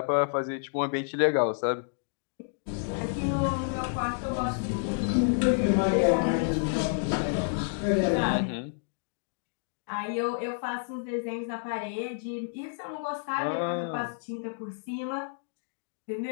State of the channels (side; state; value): right; silent; digital silence